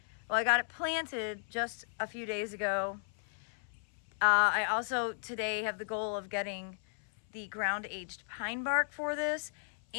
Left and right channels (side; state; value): right; silent; 54 dB below the other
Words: Well, I got it planted just a few days ago. I also today have the goal of getting the ground aged pine bark for this,